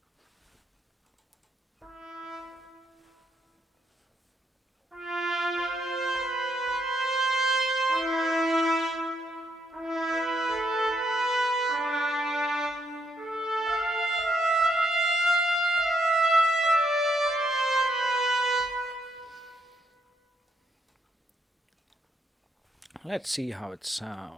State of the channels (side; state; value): both; normal; correlation 0.76